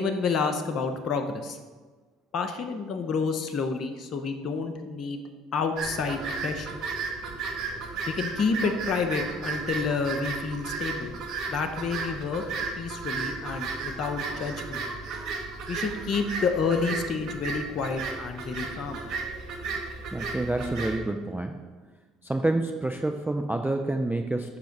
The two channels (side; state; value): both; normal; correlation 0.60